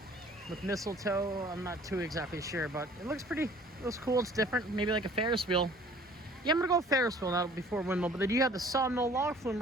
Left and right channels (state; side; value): normal; both; correlation 0.52